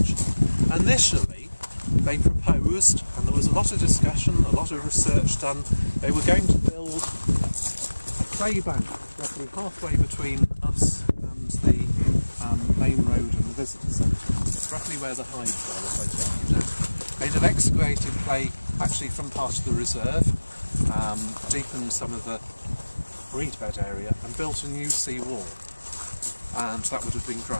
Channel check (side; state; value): both; inverted; correlation -1.00